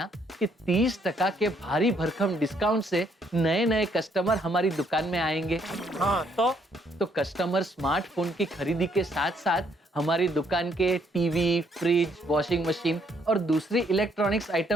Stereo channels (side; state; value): both; normal; correlation 0.70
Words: कि 30% के भारी भरकम डिस्काउंट से नए नए कस्टमर हमारी दुकान में आएंगे। हाँ तो कस्टमर स्मार्टफोन की खरीदी के साथ साथ हमारी दुकान के टीवी, फ्रिज, वॉशिंग मशीन और दूसरी इलेक्ट्रॉनिक्स